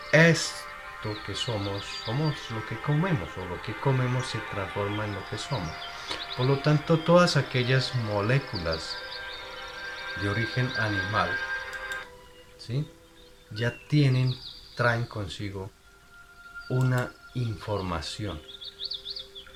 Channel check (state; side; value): identical; both; correlation 1.00